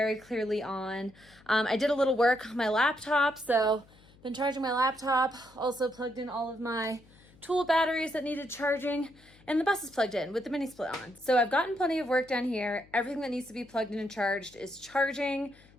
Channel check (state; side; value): noise; left; hum, 26 dB below the sound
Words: clearly on. I did a little work on my laptop, so been charging my laptop. Also plugged in all of my tool batteries that needed charging, and the bus is plugged in with the mini split on. So I've gotten plenty of work done here. Everything that needs to be plugged in and charged is charging.